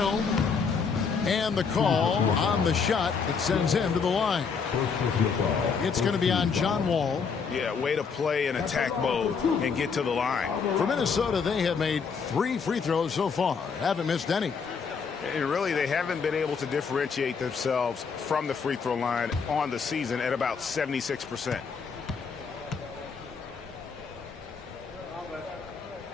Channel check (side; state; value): right; quieter; 5.7 dB